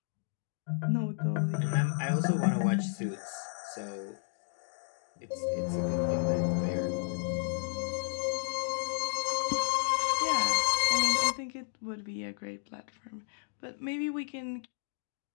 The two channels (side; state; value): right; silent; digital silence